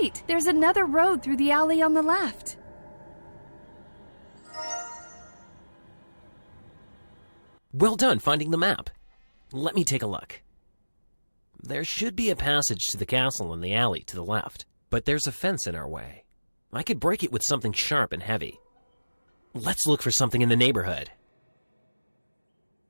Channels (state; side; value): inverted; both; correlation -1.00